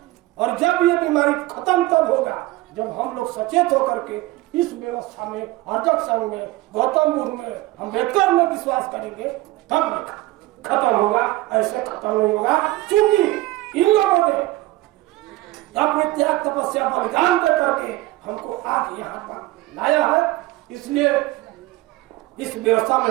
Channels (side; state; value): left; quieter; 18.4 dB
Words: और जब ये बीमारी खत्म तब होगा जब हम लोग सचेत होकर के इस व्यवस्था में, अर्जक संघ में, गौतम बुद्ध में, अम्बेडकर में विश्वास करेंगे, तब खत्म होगा। ऐसे खत्म नहीं होगा क्योंकि इन लोगों ने अपने त्याग तपस्या बलिदान दे करके हमको आज यहाँ पर लाया है। इसलिए इस व्यवस्था में